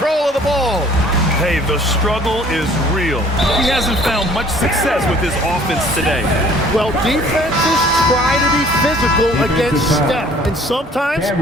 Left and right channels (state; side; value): normal; both; correlation 0.55